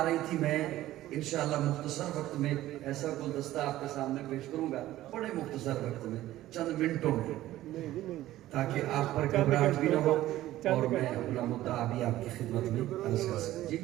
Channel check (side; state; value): left; quieter; 14.9 dB